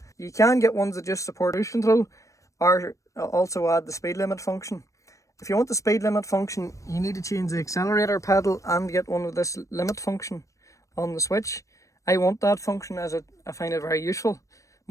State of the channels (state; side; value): late; right; 0.15 ms